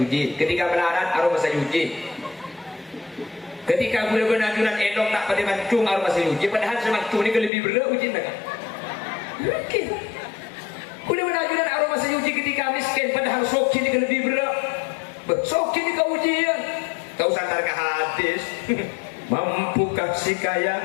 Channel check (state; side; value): drops out; right; at 7.5 s